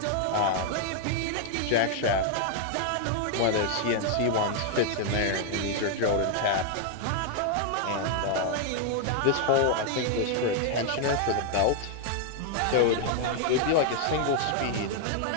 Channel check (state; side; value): different; both; correlation 0.00